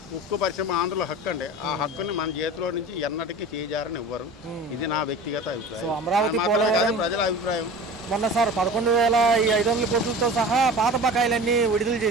ఉక్కు పరిశ్రమ ఆంధ్రుల హక్కు అండి. ఆ హక్కుని మన చేతిలో నుంచి ఎన్నటికీ చేజారని ఇవ్వరు. ఇది నా వ్యక్తిగత అభిప్రాయం. సో అమరావతి పోలవరం ప్రజల అభిప్రాయం. మొన్న సార్ 11,500 కోట్లతో సహా పాత బకాయిలన్నీ విడుదల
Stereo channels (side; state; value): both; normal; correlation 0.37